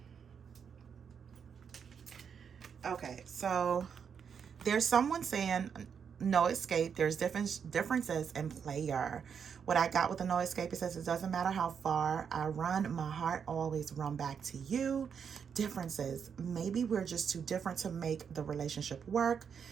Okay, so there's someone saying no escape. There's differences in player. What I got with the no escape, it says it doesn't matter how far I run, my heart always run back to you. Differences. Maybe we're just too different to make the relationship work.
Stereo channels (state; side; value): quieter; left; 7.0 dB